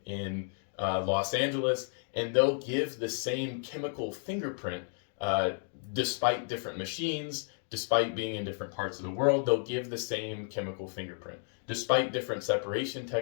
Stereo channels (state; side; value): silent; right; 56 dB below the other